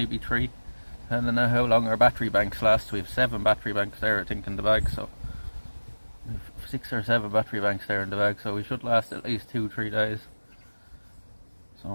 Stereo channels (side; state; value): both; inverted; correlation -1.00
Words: 3. I don't know how long our battery banks last. We have 7 battery banks there, I think, in the bag. So we have 6 or 7 battery banks there in the bag. So we should last at least 2-3 days. So